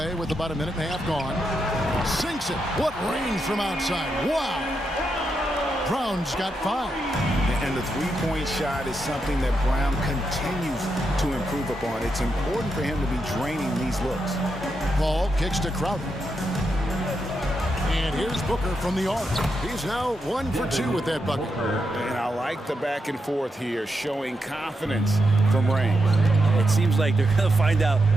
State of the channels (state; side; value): normal; both; correlation 0.84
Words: with about a minute and a half gone. Sinks it. What range from outside. Wow. Brown's got 5. And the three-point shot is something that Brown continues to improve upon. It's important for him to be draining these looks. Ball kicks to Crowder. And here's Booker from the arc. He's now 1 for 2 with that bucket. And I like the back and forth here, showing confidence from range. It seems like they're going to find out